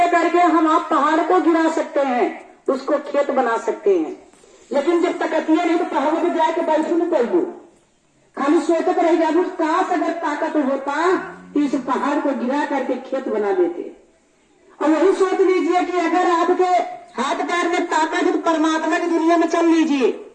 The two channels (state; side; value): identical; both; correlation 1.00